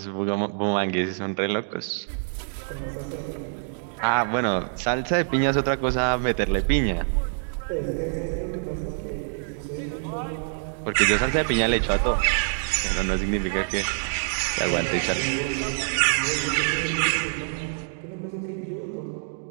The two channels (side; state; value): left; silent; digital silence